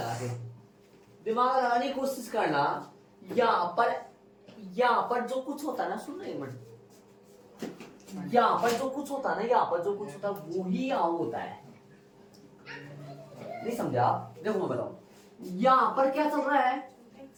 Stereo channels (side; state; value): both; identical; correlation 1.00